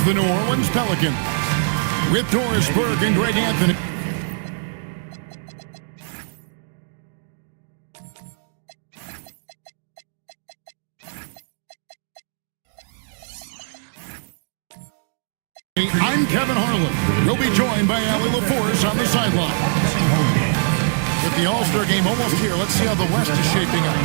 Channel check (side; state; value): left; silent; digital silence